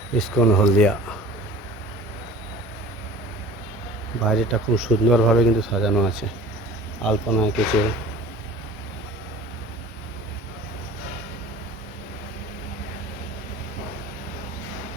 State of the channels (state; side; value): normal; both; correlation 0.43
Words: ইস্কন হলদিয়া বাইরেটা খুব সুন্দরভাবে কিন্তু সাজানো আছে, আলপনা এঁকেছে।